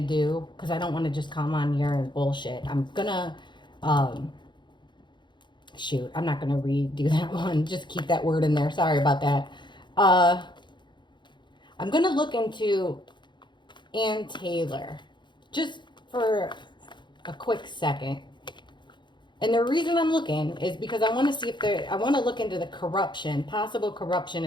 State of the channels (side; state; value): right; late; 0.22 ms